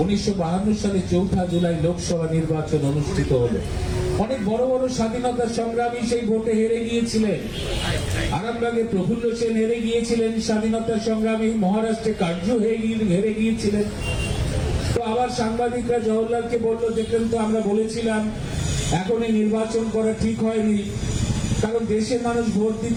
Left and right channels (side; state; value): both; identical; correlation 1.00